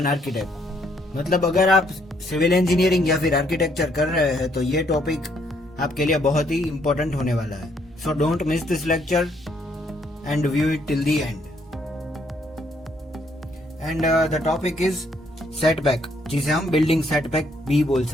architect. मतलब अगर आप civil engineering या फिर architecture कर रहे हैं तो ये टॉपिक आपके लिए बहुत ही इम्पोर्टेंट होने वाला है. So don't miss this lecture and view it till the end. And the topic is setback, जिसे हम बिल्डिंग सेटबैक भी बोल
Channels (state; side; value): normal; both; correlation 0.69